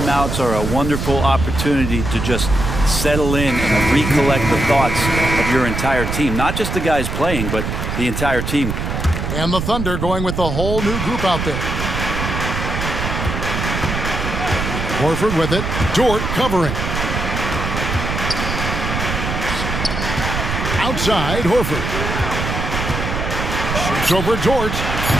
are a wonderful opportunity to just settle in and recollect the thoughts of your entire team. Not just the guys playing, but the entire team. And the Thunder going with a whole new group out there. Horford with it. Dort covering. Outside, Horford. Shoots over Dort.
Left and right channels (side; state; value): right; noise; rumble, 3 dB below the sound